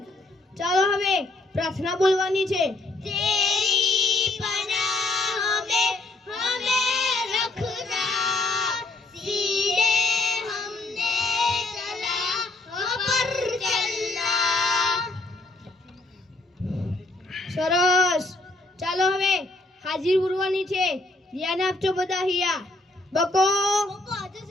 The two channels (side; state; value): right; quieter; 3.1 dB